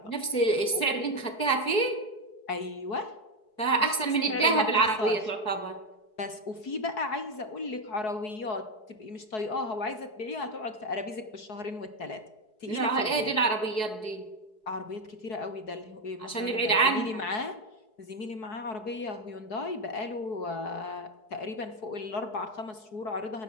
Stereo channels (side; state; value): right; late; 4.7 ms